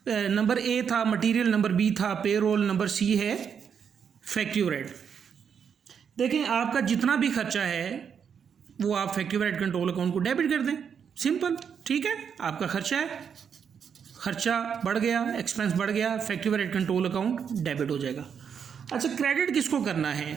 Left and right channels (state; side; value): quieter; left; 7.3 dB